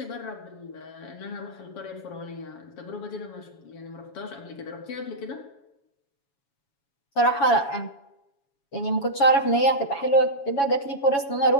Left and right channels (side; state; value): right; late; 7.2 ms